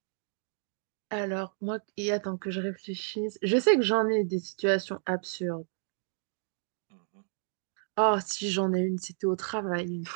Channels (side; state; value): left; silent; digital silence